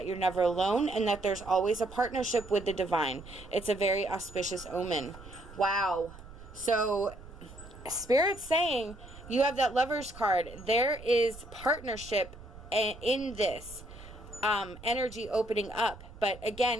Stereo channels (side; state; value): right; noise; rumble, 17 dB below the sound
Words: you're never alone and that there's always a partnership with the divine. It's a very auspicious omen. Wow. So Spirit's saying you have that Lovers card. There is partnership in this energy opening up. But